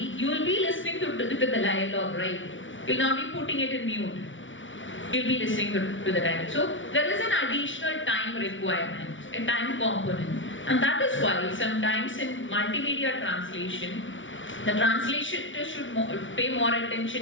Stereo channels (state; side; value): late; right; 0.56 ms